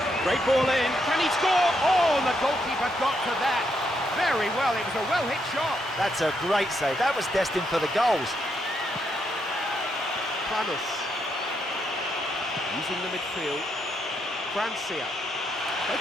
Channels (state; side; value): normal; both; correlation 0.78